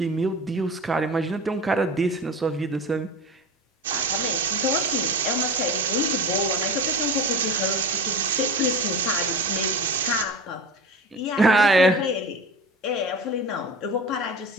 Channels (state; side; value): normal; both; correlation 0.31